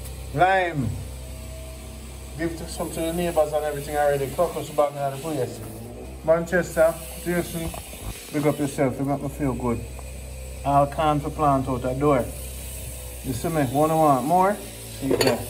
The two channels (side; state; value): both; identical; correlation 1.00